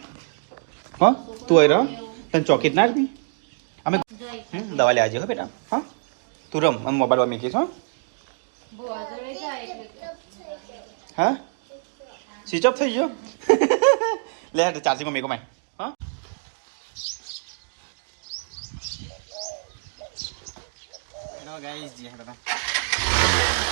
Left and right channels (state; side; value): silent; left; digital silence